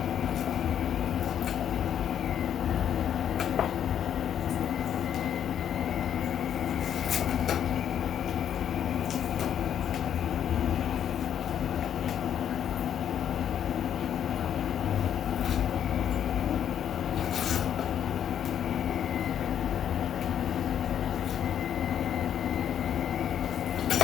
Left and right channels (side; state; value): right; quieter; 9.5 dB